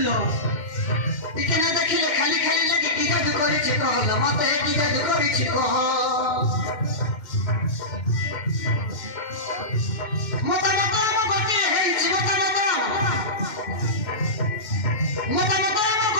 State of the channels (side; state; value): right; late; 2.6 ms